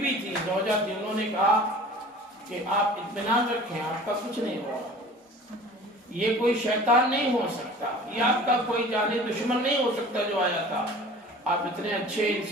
تھی، زوجہ تھی، انہوں نے کہا کہ آپ اطمینان رکھیں، آپ کا کچھ نہیں ہوگا، یہ کوئی شیطان نہیں ہو سکتا، یہ آپ کا کوئی جانی دشمن نہیں ہو سکتا جو آیا تھا۔ آپ اتنے اچھے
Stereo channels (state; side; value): normal; both; correlation 0.44